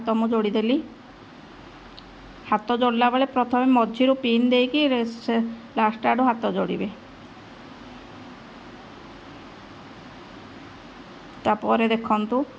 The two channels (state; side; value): identical; both; correlation 1.00